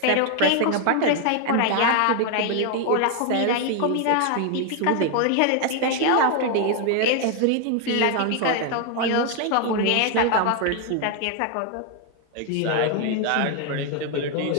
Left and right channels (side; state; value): both; different; correlation 0.01